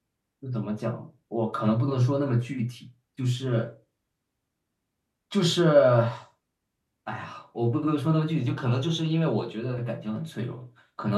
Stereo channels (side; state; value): both; identical; correlation 1.00